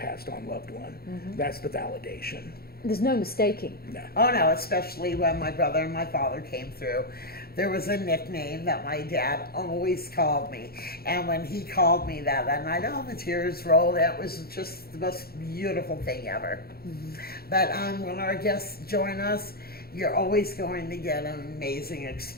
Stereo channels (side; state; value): right; late; 0.45 ms